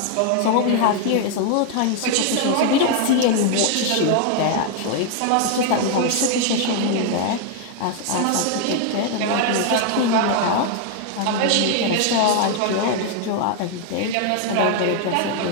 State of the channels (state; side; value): different; both; correlation 0.00